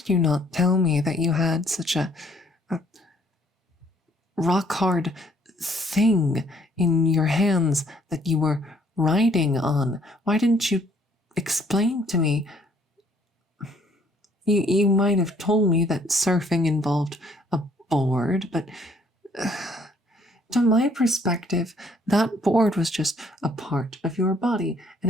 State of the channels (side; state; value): both; normal; correlation 0.63